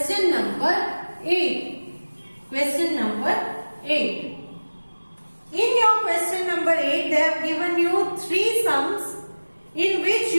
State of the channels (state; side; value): inverted; both; correlation -1.00